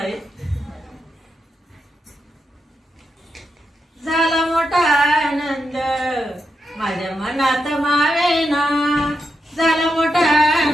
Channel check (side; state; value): both; normal; correlation 0.85